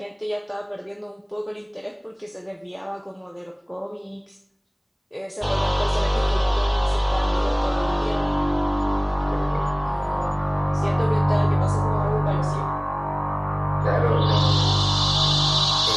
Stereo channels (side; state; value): both; identical; correlation 1.00